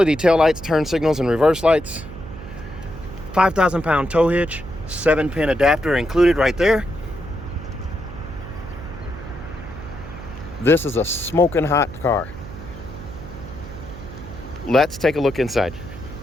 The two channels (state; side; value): noise; right; hum, 14 dB below the sound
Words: taillights, turn signals, and reverse lights. 5,000-pound tow hitch, 7-pin adapter included right there. This is a smoking hot car. Let's take a look inside.